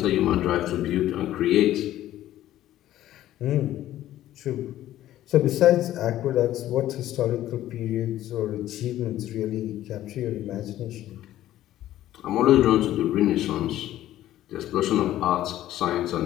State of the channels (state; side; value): quieter; right; 13.5 dB